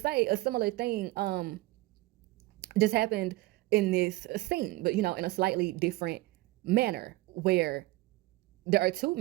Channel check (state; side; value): quieter; left; 19.3 dB